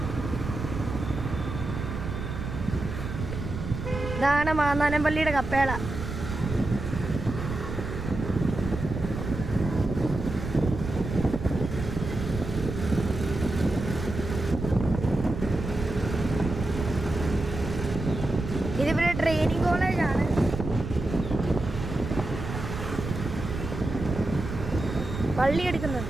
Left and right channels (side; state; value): right; noise; rumble, 6 dB below the sound